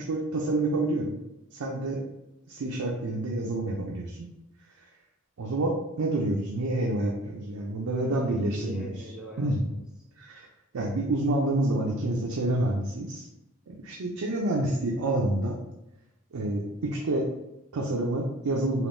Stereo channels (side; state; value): both; normal; correlation 0.46